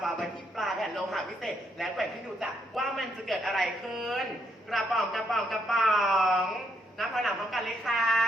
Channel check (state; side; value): normal; both; correlation 0.75